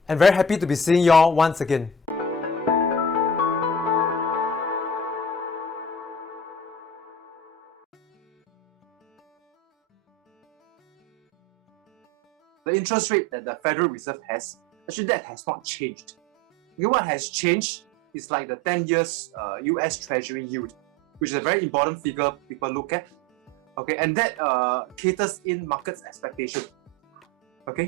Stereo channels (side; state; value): both; normal; correlation 0.36